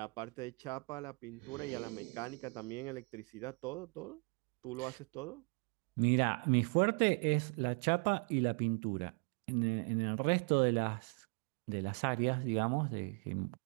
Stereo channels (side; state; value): left; quieter; 36.0 dB